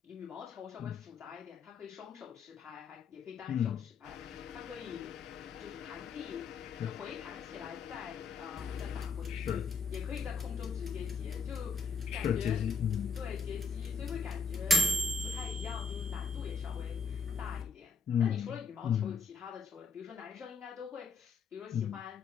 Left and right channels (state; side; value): quieter; right; 5.1 dB